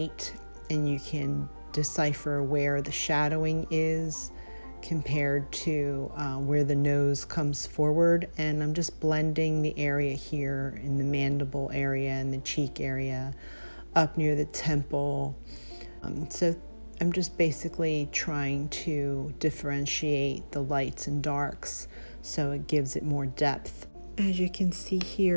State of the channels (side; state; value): both; inverted; correlation -1.00